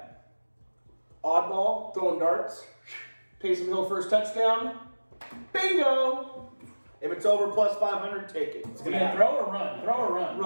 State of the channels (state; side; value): inverted; both; correlation -1.00